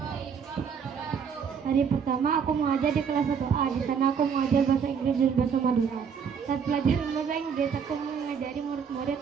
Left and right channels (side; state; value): left; quieter; 6.7 dB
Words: Hari pertama aku mengajar di kelas 1A. Di sana aku mengajar bahasa Inggris dan bahasa Madura. Saat pelajaran bahasa Inggris, aku mengajari murid-murid